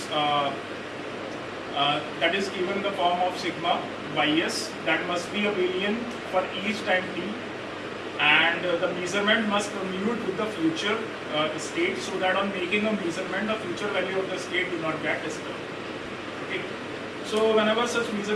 given in the form of sigma Ys, that must be abelian for each time t, and the measurement must commute with the future state, so that on making a measurement, the future value of the state do not get disturbed. Okay. So whenever such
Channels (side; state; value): both; identical; correlation 1.00